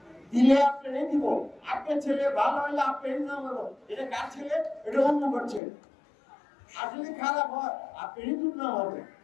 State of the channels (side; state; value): right; drops out; at 5.6 s